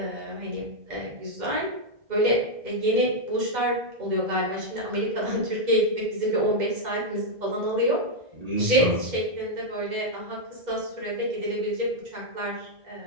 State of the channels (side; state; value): left; late; 2.1 ms